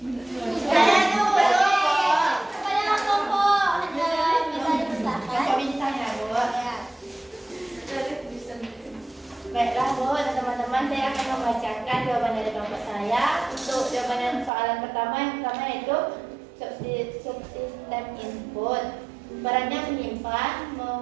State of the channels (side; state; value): left; drops out; at 14.5 s